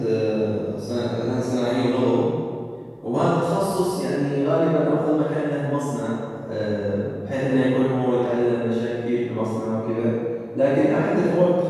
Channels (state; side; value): identical; both; correlation 1.00